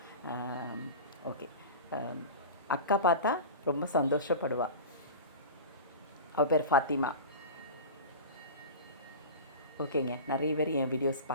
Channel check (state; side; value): inverted; both; correlation -0.32